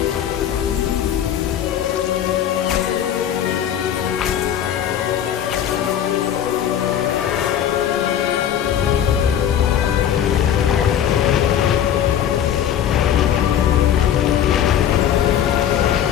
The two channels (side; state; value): right; quieter; 9.8 dB